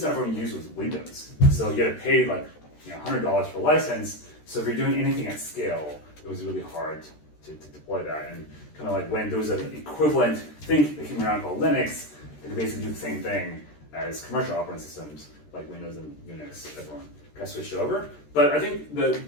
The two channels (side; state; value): right; late; 13 ms